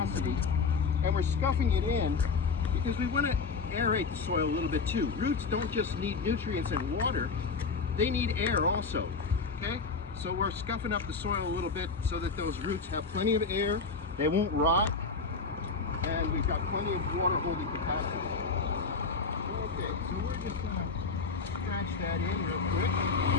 and we're scuffing it in because we want to aerate the soil a little bit too. Roots don't just need nutrients and water, they need air also, okay? So we're scuffing up the soil a little bit so that those roots have plenty of air, they won't rot, and we've got plenty of water holding capacity. Okay, so we're just gonna scratch that in real quick.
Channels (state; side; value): quieter; right; 4.6 dB